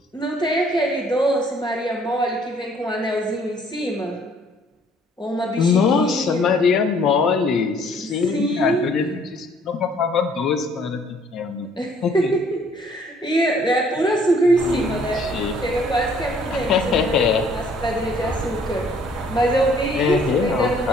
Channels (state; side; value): normal; both; correlation 0.60